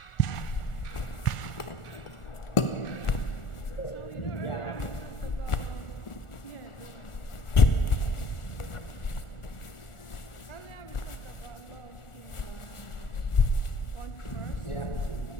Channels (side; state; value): right; late; 1.4 ms